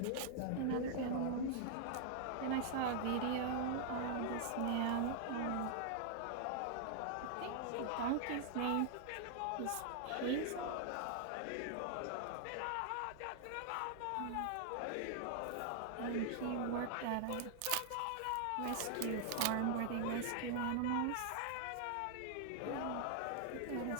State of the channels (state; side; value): different; both; correlation -0.01